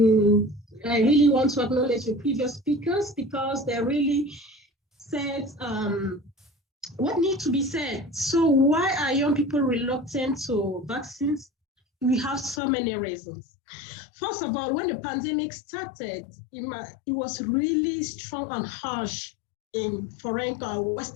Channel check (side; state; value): right; drops out; at 12.6 s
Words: really want to acknowledge the previous speakers, because they really said what needs to be said. So why are young people reluctant to vaccines? We have so many reasons. First of all, when the pandemic started, it was really strong and harsh in foreign